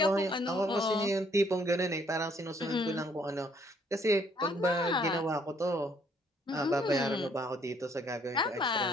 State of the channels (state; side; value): normal; both; correlation 0.65